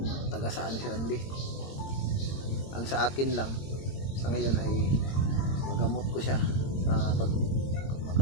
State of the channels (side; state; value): right; late; 22 ms